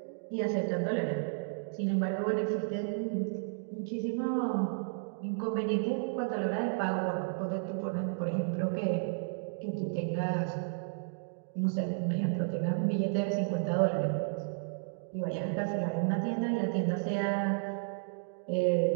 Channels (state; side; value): silent; left; digital silence